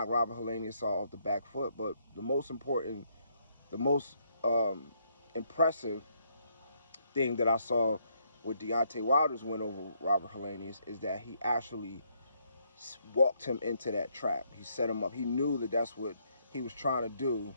Robert Helenius off the back foot. But the most important, the most impressive thing that I saw with Deontay Wilder's win over Robert Helenius is that he actually walked him into that trap. He set him up. He knew that that's what he was trying to do,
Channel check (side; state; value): both; inverted; correlation -0.72